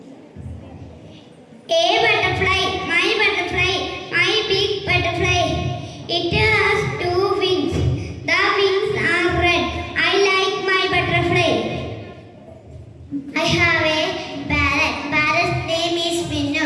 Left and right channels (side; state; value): both; identical; correlation 1.00